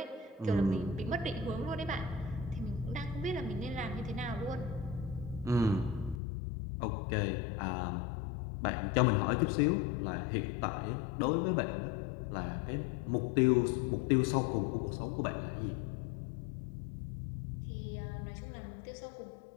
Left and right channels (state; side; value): drops out; right; at 6.2 s